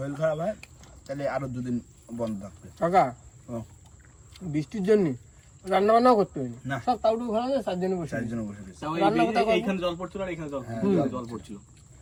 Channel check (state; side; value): identical; both; correlation 1.00